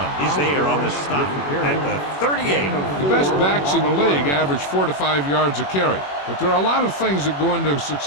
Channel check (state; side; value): late; right; 21 ms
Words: is there on the stop at the 38. The best backs in the league average 4 to 5 yards a carry. But there are a lot of things that go into a